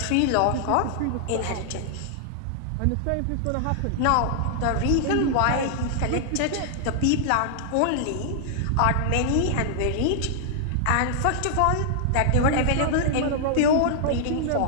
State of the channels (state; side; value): different; both; correlation -0.01